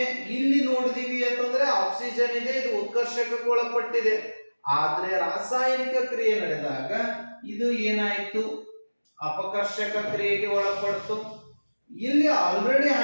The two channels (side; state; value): both; inverted; correlation -1.00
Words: ಇಲ್ಲಿ ನೋಡಿದೀವಿ ಅಂತಂದ್ರೆ ಆಕ್ಸಿಜನ್ ಇದೆ, ಇದು ಉತ್ಕರ್ಷಕಕ್ಕೆ ಒಳಪಟ್ಟಿದೆ. ಆದ್ರೆ ರಾಸಾಯನಿಕ ಕ್ರಿಯೆ ನಡೆದಾಗ ಇದು ಏನಾಯ್ತು, ಅಪಕರ್ಷಕ ಕ್ರಿಯೆಗೆ ಒಳಪಡ್ತು. ಇಲ್ಲಿ ಆಲ್ರೆಡಿ